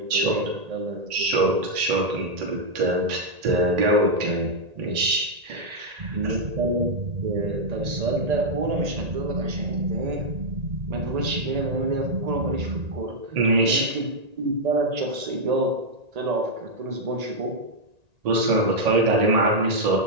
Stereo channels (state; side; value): late; left; 1.8 ms